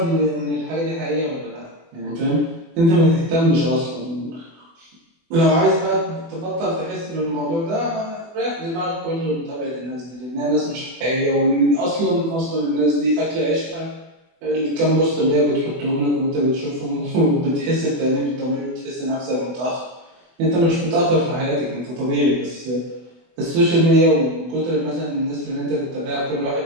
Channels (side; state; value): left; late; 24 ms